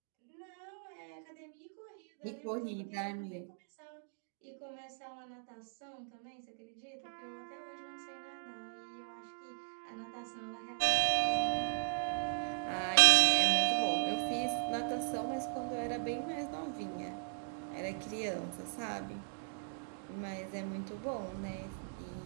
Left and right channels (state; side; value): silent; left; digital silence